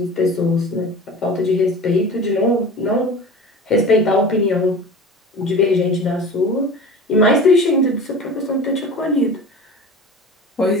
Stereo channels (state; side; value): normal; both; correlation 0.36